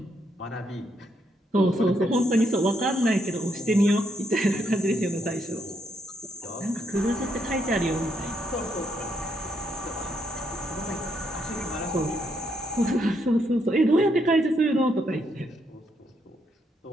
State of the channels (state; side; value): normal; both; correlation 0.76